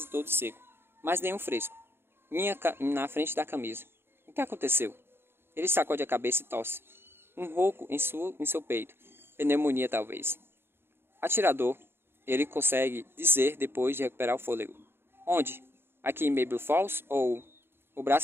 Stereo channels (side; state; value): left; late; 0.11 ms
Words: todo seco, mas nenhum fresco. Na frente da camisa. O que aconteceu? Ele sacode a cabeça e tosse. Um ronco em seu peito. Pneumonia, talvez. Atirador, ele consegue dizer depois de recuperar o fôlego. Onde? Aqui em Maple Falls? Ou... O